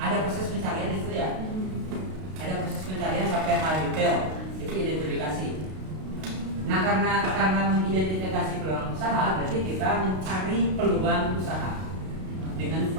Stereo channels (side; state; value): left; late; 32 ms